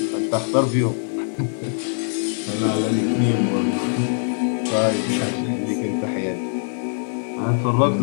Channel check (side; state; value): right; silent; digital silence